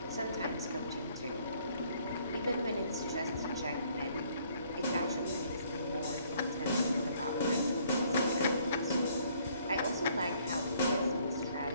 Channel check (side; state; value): both; inverted; correlation -0.63